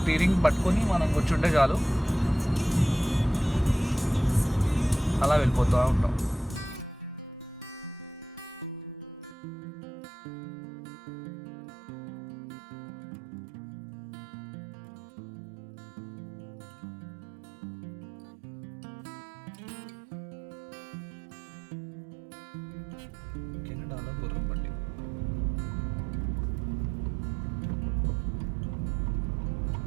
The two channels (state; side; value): drops out; left; at 9.3 s